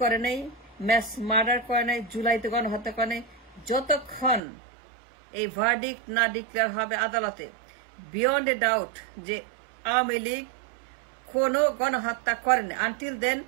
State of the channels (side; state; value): left; drops out; at 4.4 s